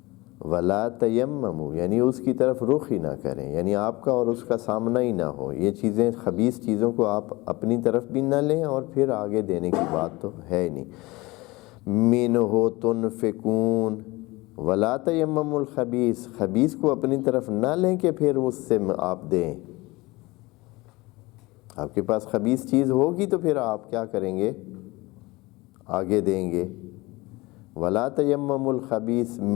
وَلَا تَيَمَّمُوا یعنی اس کی طرف رخ ہی نہ کریں، یعنی آپ کا اور اس کا سامنا ہی نہ ہو. یہ چیزیں، خبیث چیزوں کو آپ اپنی طرف بھی نہ لیں اور پھر آگے دینے کی بات تو ہے ہی نہیں. مِنْهُ تُنْفِقُونَ وَلَا تَيَمَّمُوا الْخَبِيثَ، خبیث کو اپنی طرف نہ لیں کہ پھر اس سے آپ دیں. آپ کے پاس خبیث چیز ہوگی تو پھر آپ کیا کریں گے؟ آگے دیں گے. وَلَا تَيَمَّمُوا الْخَبِيثَ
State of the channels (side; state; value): right; quieter; 21.9 dB